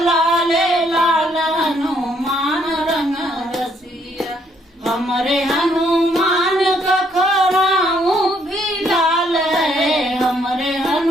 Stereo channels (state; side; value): normal; both; correlation 0.69